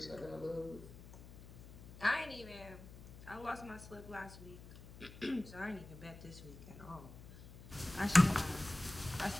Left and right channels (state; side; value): noise; left; hum, 16 dB below the sound